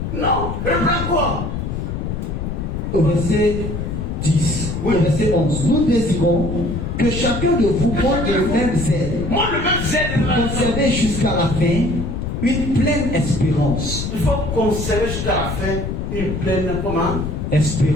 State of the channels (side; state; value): left; noise; rumble, 4 dB below the sound